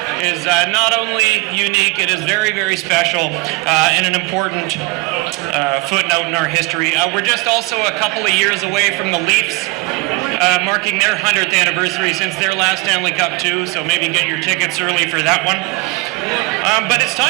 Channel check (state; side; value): quieter; left; 21.9 dB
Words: is not only unique, it is very, very special and an important footnote in our history. We're just also a couple of years away from the Leafs marking their 100th anniversary since their last Stanley Cup too, so maybe get your tickets early for that one. But it's